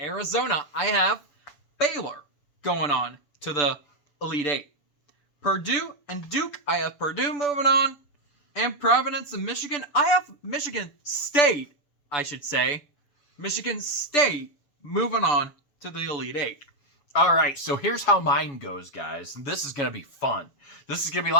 I have Baylor going on to the Elite 8. Purdue and Duke, I have Purdue moving on. And Providence and Michigan, I have Michigan State, I should say. Michigan State moving on to the Elite 8. All right, so here's how mine goes, guys. This is going to be fun. This is going to be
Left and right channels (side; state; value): right; late; 6.9 ms